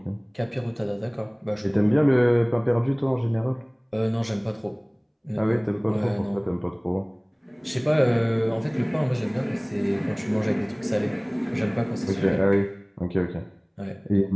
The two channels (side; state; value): both; identical; correlation 1.00